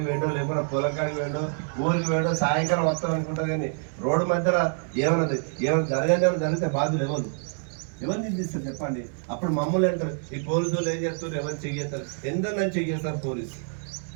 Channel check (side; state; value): left; silent; 61 dB below the other